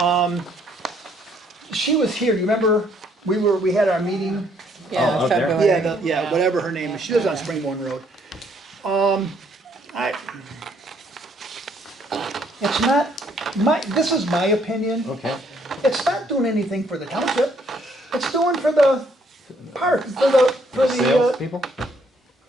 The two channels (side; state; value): both; normal; correlation 0.67